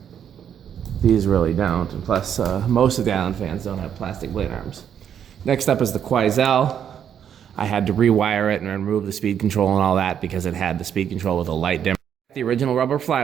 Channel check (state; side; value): quieter; left; 8.8 dB